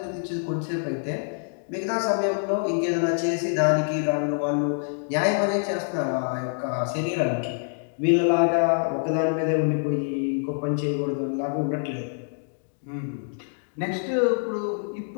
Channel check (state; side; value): silent; right; digital silence